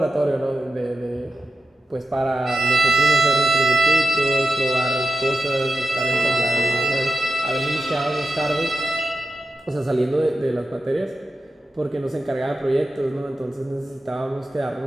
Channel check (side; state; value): both; normal; correlation 0.91